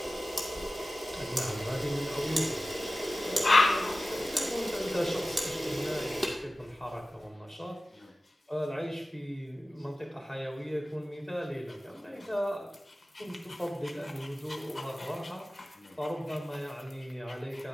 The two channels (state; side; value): normal; both; correlation 0.96